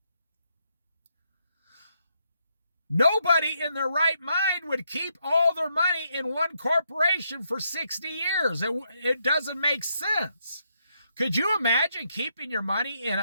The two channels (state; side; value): inverted; both; correlation -0.78